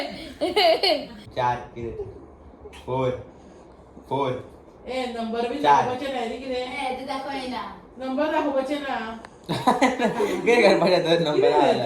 4 ए नंबर भी चार. दाखवायचे नाही रे किरे. ते दाखवायला नंबर दाखवायचे ना. काय करपाचे दोन नंबर आला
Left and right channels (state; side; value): identical; both; correlation 1.00